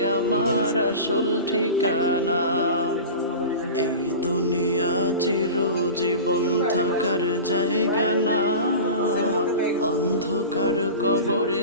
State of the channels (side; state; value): both; inverted; correlation -0.32